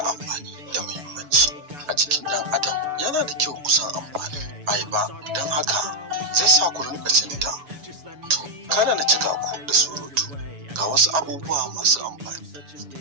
amfani da muhimmanci a jikin ɗan adam. Yana da kyau kusan amfani ayaba, don haka zai sa ku rinƙa cin ta. To kada na cika ku da surutu, ga wasu abubuwa masu amfani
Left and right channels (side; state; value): left; late; 7.0 ms